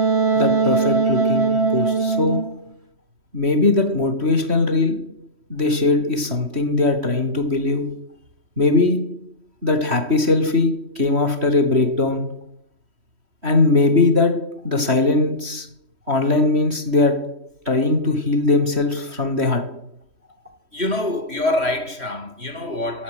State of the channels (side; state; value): left; late; 3.1 ms